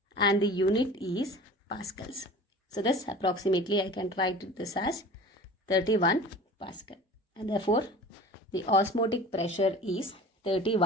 and the unit is pascals. So this approximately I can write this as 31 pascal, and therefore the osmotic pressure is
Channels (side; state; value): both; normal; correlation 0.40